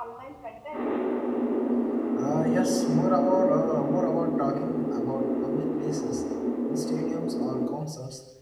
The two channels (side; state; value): both; identical; correlation 1.00